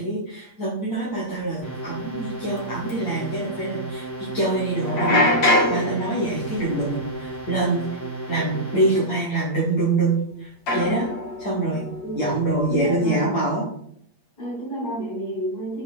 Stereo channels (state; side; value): late; right; 8.5 ms